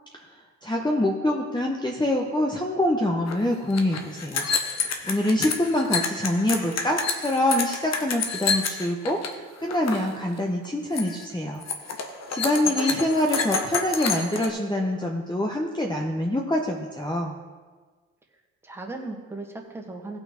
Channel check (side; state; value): both; normal; correlation 0.60